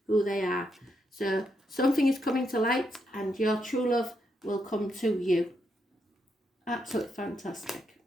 who they are. So something is coming to light and your true love will come to you. Absolutely fantastic.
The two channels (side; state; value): both; normal; correlation 0.80